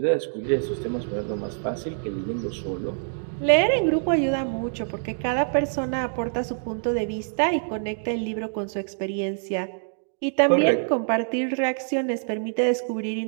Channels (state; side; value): silent; left; digital silence